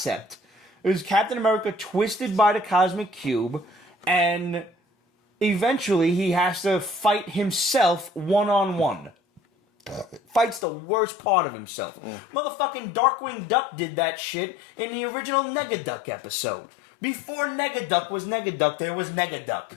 It was Captain America twisted by the Cosmic Cube, and eventually he has to fight himself one-on-one. Fights the worst part of himself. Motherfucking Darkwing Duck did that shit in the original Negaduck episode. Before Negaduck was Negaduck, there was Negaduck.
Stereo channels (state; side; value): drops out; right; at 10.7 s